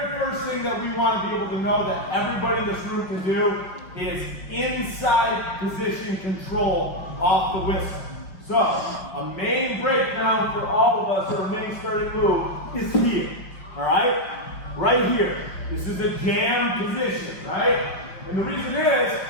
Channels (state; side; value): late; right; 5.1 ms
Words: first thing that we want to be able to know that everybody in this room can do is inside position control off the whistle. So, a main breakdown for all of us, or a main starting move, is here, all right? Right here. This is a jam position, right? And the reason is,